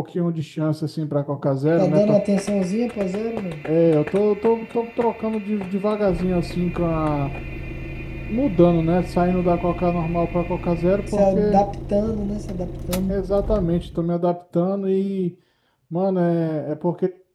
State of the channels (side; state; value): both; identical; correlation 1.00